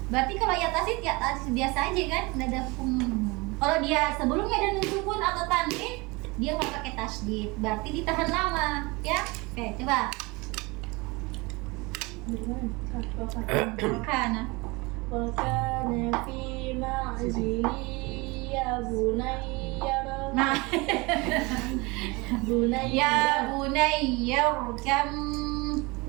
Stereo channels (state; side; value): quieter; left; 25.3 dB